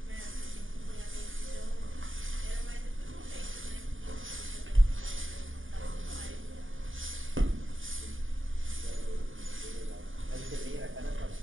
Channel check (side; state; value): left; late; 0.58 ms